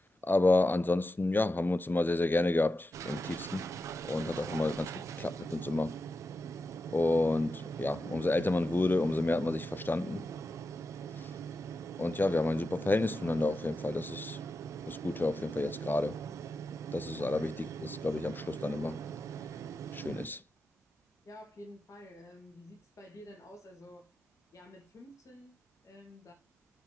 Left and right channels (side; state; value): both; normal; correlation 0.90